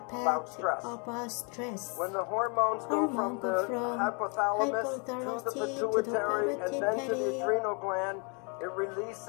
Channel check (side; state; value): right; quieter; 35.5 dB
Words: about stress. When the hormones go from the hypothalamus to the pituitary and then to the adrenal gland, it